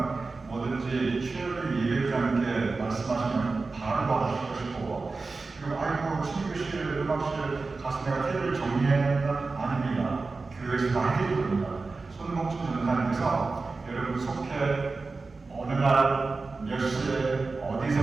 뭐든지 최열린 예배장님께 말씀하시면 바로 도와주실 것이고 그리고 아이고 신교실, 음악실 가서 내가 테이블 정리했다? 아닙니다. 교회에서 다 해드릴 겁니다. 손목준 전사님께서 여러분 속회 어느 날 몇 시에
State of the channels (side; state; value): left; quieter; 3.9 dB